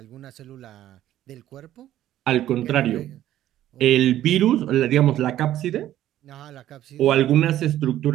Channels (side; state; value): left; quieter; 12.9 dB